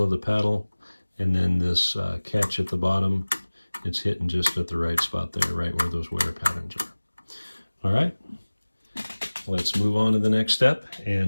of the paddle, and then this catch at the bottom, it's hitting just at the right spot there, right where those wear patterns are. All right, let's move on to the next step,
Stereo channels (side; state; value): both; inverted; correlation -1.00